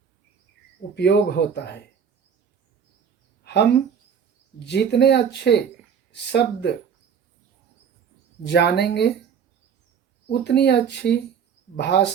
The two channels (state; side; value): quieter; left; 7.4 dB